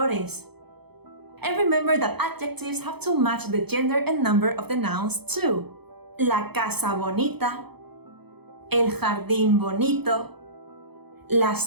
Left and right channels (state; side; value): late; left; 0.98 ms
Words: And remember that adjectives have to match the gender and number of the nouns too. La casa bonita, el jardín bonito,